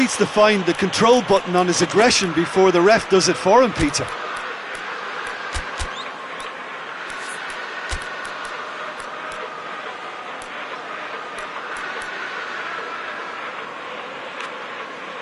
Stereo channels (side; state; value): both; identical; correlation 1.00